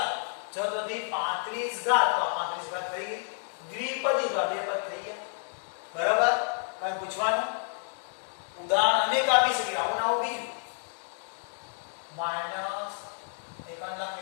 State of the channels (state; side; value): silent; right; 58 dB below the other